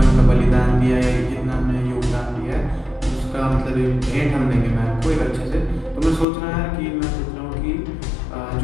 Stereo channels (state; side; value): drops out; right; at 6.2 s